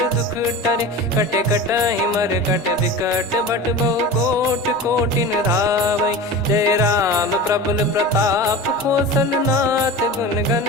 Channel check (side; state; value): both; normal; correlation 0.31